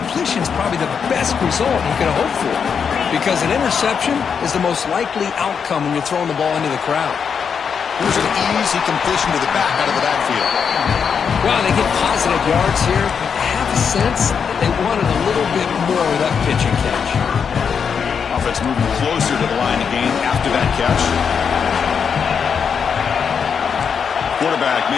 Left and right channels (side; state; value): right; quieter; 6.6 dB